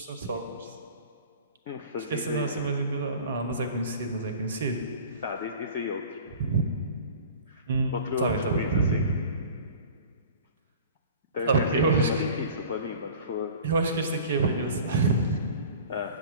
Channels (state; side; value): inverted; both; correlation -0.42